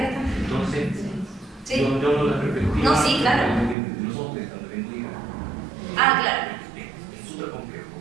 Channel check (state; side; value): drops out; left; at 3.8 s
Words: también. Entonces, Sí. yo no la perspectiva. No, sí, claro. De los hombres también diga. Ah, claro. Es súper complejo.